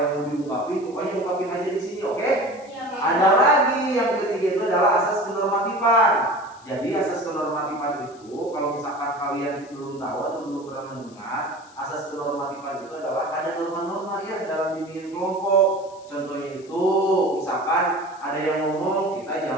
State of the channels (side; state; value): left; noise; hiss, 26 dB below the sound